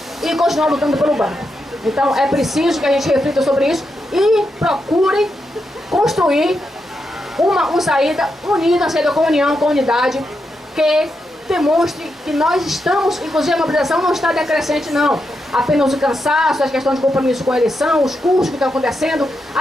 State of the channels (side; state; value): both; normal; correlation 0.85